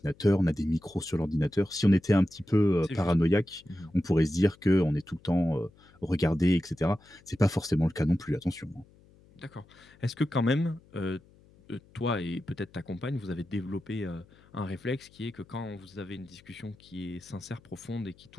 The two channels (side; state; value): left; noise; hum, 27 dB below the sound